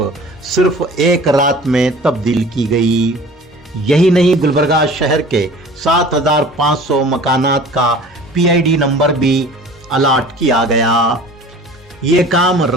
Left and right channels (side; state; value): both; normal; correlation 0.44